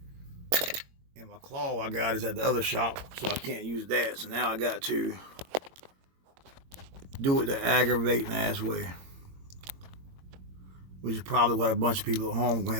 And my claw I got is at the other shop, so I can't use that. So now I got to do it the aggravating ass way, which is probably what a bunch of people at home are gonna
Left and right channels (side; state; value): left; late; 22 ms